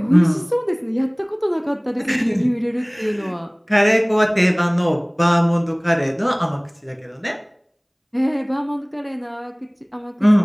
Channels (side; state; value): both; identical; correlation 1.00